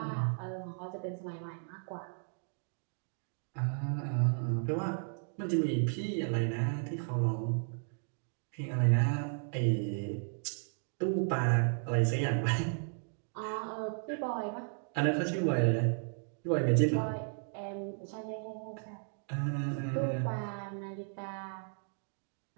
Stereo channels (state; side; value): silent; left; 55 dB below the other